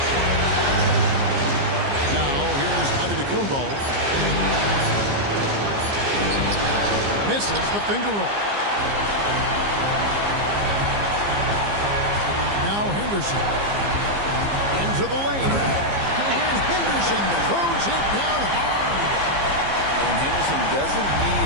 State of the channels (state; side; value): late; left; 15 ms